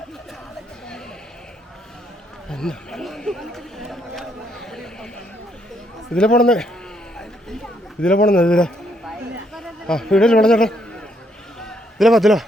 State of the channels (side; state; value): both; normal; correlation 0.73